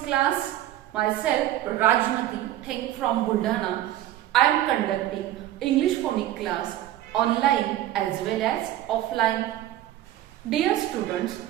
class. Myself Rajmati Theng from Buldhana. I am conducting English phonics class online as well as offline. Dear students,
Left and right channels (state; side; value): quieter; left; 13.4 dB